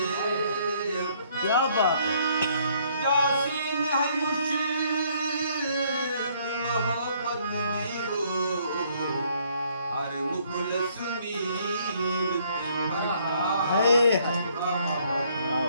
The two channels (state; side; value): inverted; both; correlation -0.65